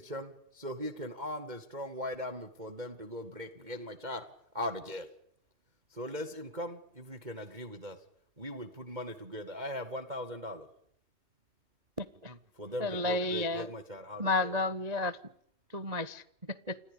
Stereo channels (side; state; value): left; late; 2.2 ms